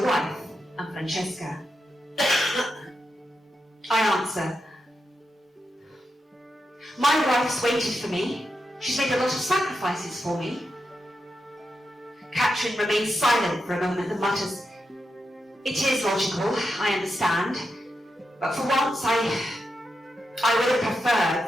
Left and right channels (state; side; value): normal; both; correlation 0.87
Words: wife and Francesca. I answer, my wife's waited for me. She's made a lot of sacrifices for me. Catherine remains silent for a moment and mutters, it is logical, I understand, but for once I would have preferred